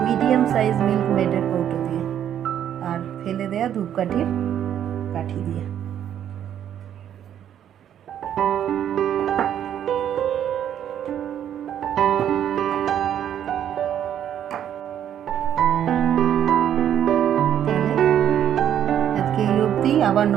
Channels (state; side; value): quieter; left; 10.0 dB